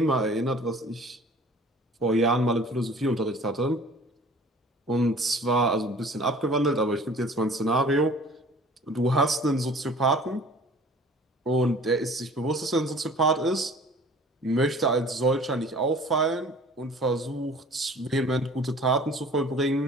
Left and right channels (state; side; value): normal; both; correlation 0.48